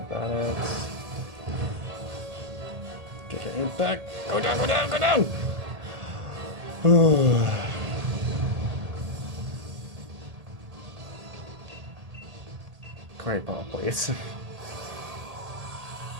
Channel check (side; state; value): left; late; 1.8 ms